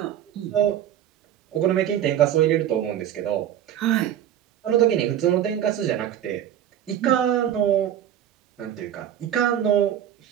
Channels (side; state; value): left; quieter; 10.6 dB